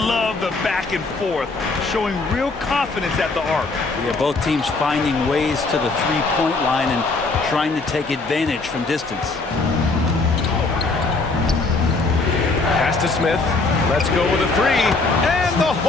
the back and forth, showing real confidence at the arc. Yeah, both teams finding ways to the three-point line and trying to take advantage from distance. Pass to Smith. Let's go with a three. And the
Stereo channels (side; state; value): right; quieter; 3.7 dB